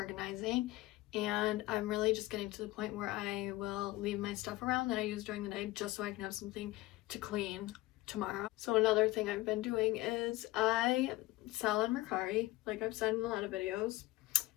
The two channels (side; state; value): right; quieter; 18.6 dB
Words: and I'm really just getting to the point where I will leave my stuff around that I use during the day just so I can have something to clean tomorrow. So another thing I've been doing is I sell on Mercari, like I've said in a lot of videos. I